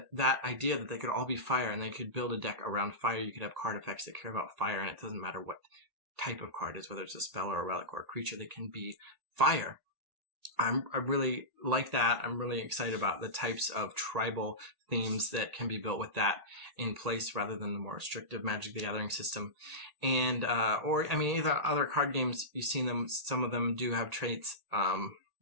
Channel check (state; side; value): late; left; 1.8 ms